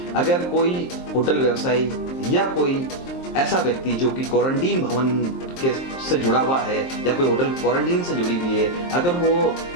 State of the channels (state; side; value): late; right; 23 ms